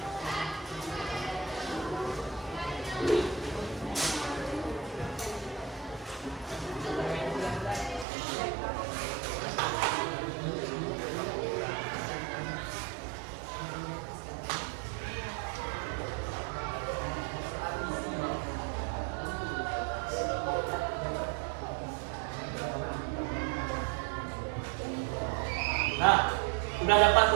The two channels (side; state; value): left; drops out; at 8.1 s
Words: Nah, sudah dapat